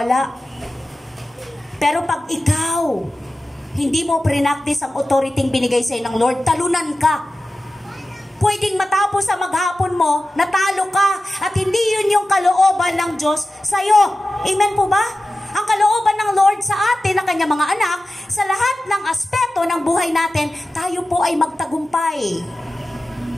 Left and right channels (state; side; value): normal; both; correlation 0.95